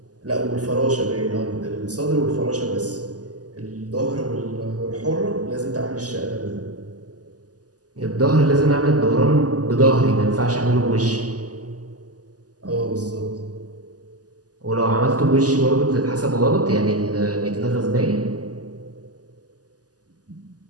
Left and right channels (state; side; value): late; left; 0.67 ms